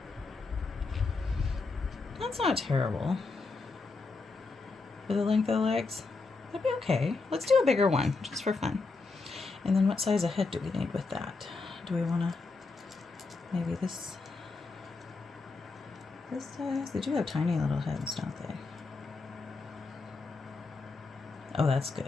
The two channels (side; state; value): right; quieter; 3.9 dB